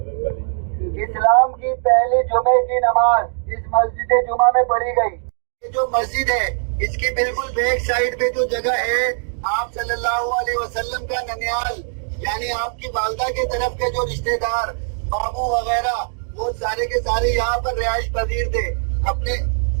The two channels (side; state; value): left; silent; digital silence